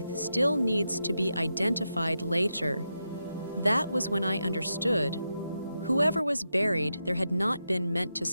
still needs to be identified later. That was when I understood. Whoever was buried there had not been meant to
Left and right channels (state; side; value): inverted; both; correlation -0.87